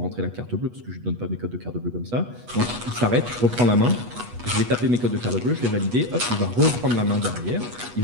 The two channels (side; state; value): left; late; 8.3 ms